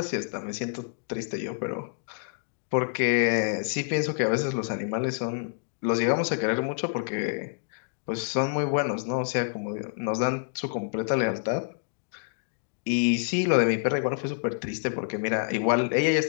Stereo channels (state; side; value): silent; right; digital silence